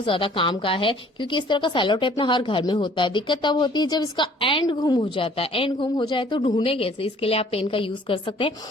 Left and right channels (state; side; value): normal; both; correlation 0.56